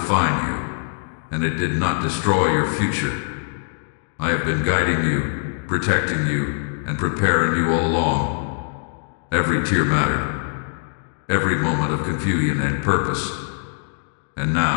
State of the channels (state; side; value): silent; right; 64 dB below the other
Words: you, and it did not destroy your future. I have been guiding you, protecting you, and preparing you all along. Every tear mattered. every moment of confusion and purpose. And